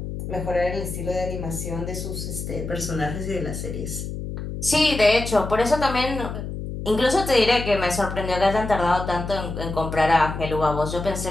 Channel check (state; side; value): noise; left; hum, 7 dB below the sound